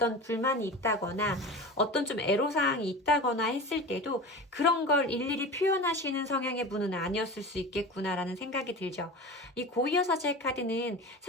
불만이 있다거나 어떤 좀 애로사항이 있다거나 했을 때도 그런 걸 일일이 표현하시는 성향의 분은 아니었을 수 있겠구나라는 생각이 들죠. 이 고위여사제 카드는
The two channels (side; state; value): both; normal; correlation 0.31